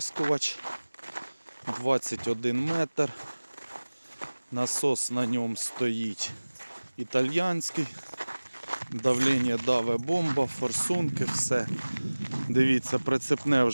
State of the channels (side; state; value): both; inverted; correlation -1.00